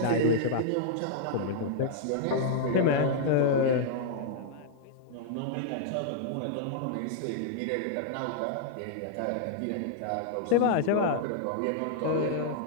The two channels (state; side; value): different; both; correlation -0.01